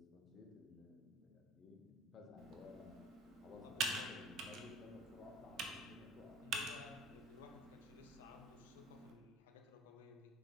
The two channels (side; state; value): both; normal; correlation 0.46